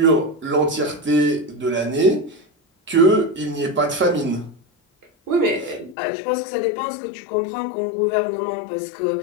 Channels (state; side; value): drops out; right; at 6.0 s